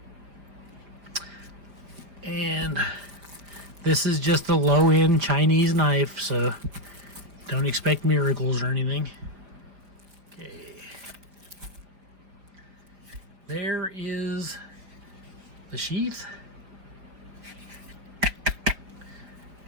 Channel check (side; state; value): left; late; 5.0 ms